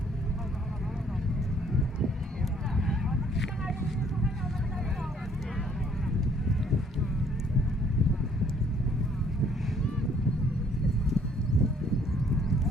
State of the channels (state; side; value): normal; both; correlation 0.62